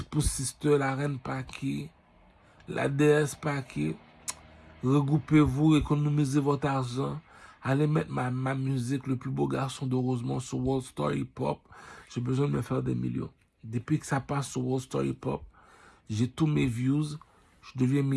Sister, la reine Paki. La déesse Paki. Regroupez-vous, économisez votre argent. Allez mettre ma musique, le plus beau garçon de Rosemont, sur World Star Hip Hop. J'ai besoin de me faire des millions. Depuis que ça passe sur World Star Hip Hop, j'ai tous mes views. Je deviens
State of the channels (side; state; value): both; identical; correlation 1.00